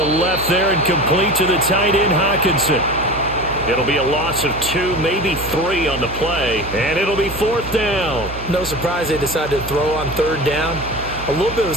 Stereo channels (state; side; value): noise; right; hum, 11 dB below the sound